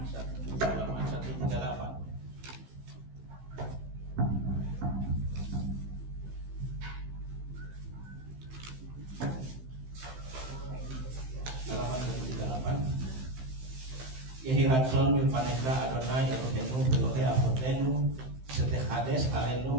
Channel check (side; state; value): left; late; 15 ms